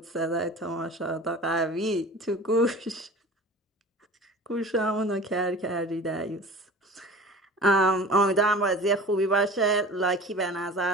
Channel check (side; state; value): both; normal; correlation 0.39